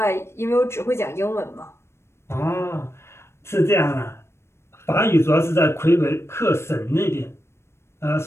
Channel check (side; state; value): right; late; 0.13 ms